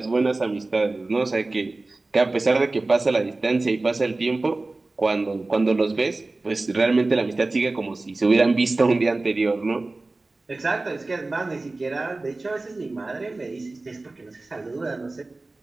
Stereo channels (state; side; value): quieter; left; 3.2 dB